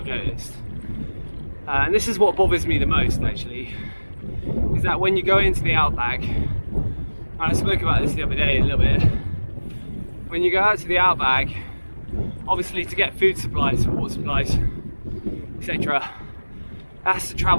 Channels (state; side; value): inverted; both; correlation -1.00